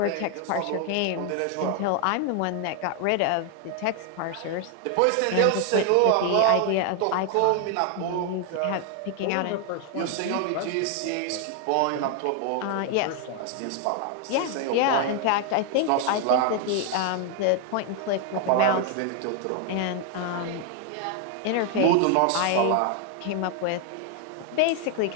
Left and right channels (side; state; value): both; different; correlation 0.00